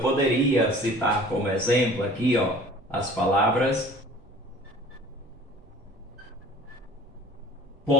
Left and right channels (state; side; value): normal; both; correlation 0.47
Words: poderia citar como exemplo aqui, as palavras